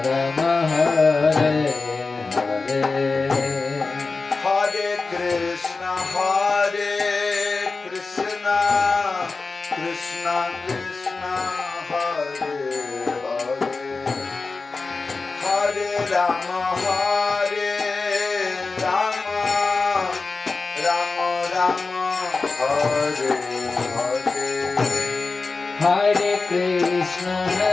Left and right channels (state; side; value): quieter; right; 4.0 dB